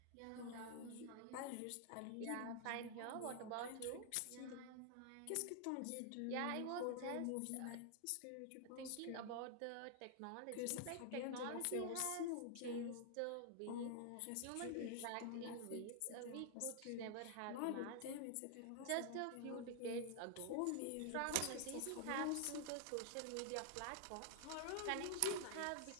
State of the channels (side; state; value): both; different; correlation 0.00